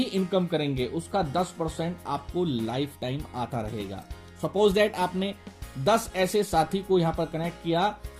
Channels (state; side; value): identical; both; correlation 1.00